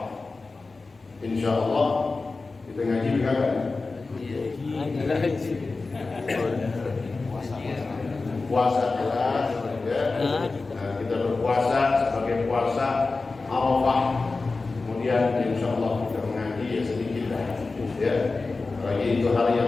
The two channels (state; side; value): quieter; right; 3.8 dB